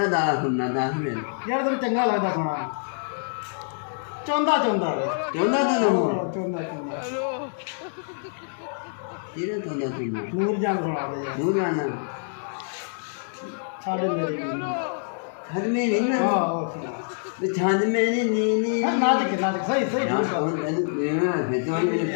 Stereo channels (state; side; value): silent; right; digital silence